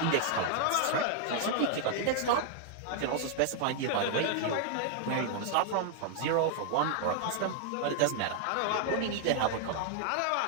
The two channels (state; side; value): different; both; correlation 0.00